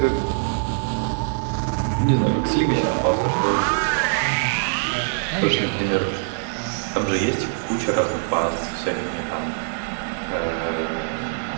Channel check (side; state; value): left; silent; digital silence